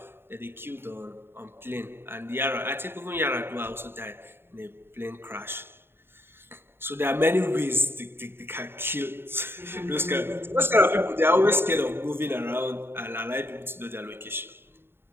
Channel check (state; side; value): late; left; 0.11 ms